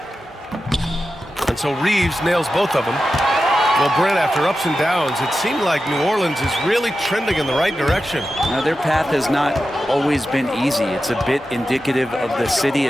And so Reeves nails both of them. Well, Brent, after ups and downs, it seemed like New Orleans is really trending in the right direction. Now, their path has not always been easy. It's a bit indicative of the city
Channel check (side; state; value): both; normal; correlation 0.92